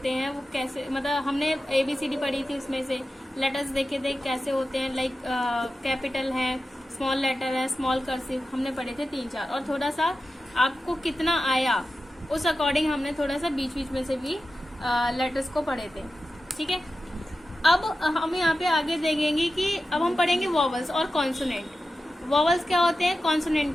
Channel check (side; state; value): both; normal; correlation 0.93